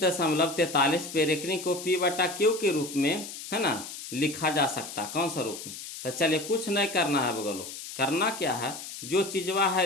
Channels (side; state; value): left; noise; hiss, 10 dB below the sound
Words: पे रेकरिंग को पी बटा क्यू के रूप में है ना लिखा जा सकता, कौन सा रूप में? तो चलिए कुछ नहीं करना है बगलो, करना क्या है, जो चीजवा